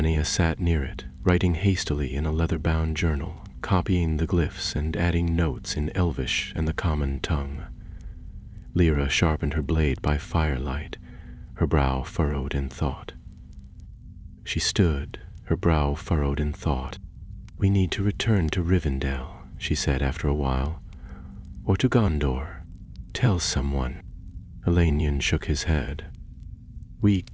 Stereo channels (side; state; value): both; identical; correlation 1.00